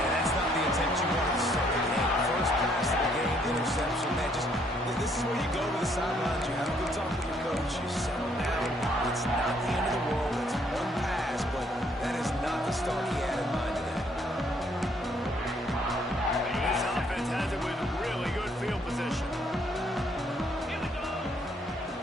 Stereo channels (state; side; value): normal; both; correlation 0.67